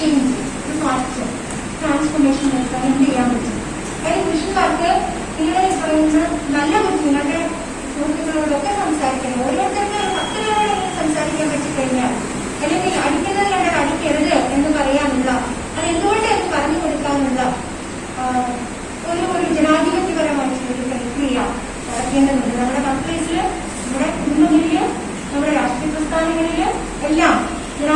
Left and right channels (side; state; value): both; identical; correlation 1.00